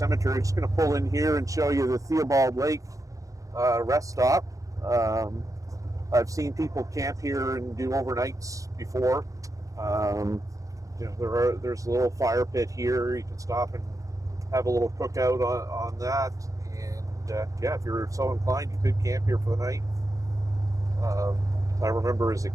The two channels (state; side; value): late; left; 0.16 ms